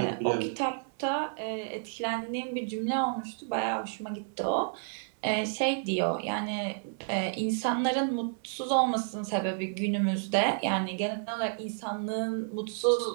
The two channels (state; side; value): silent; left; 57 dB below the other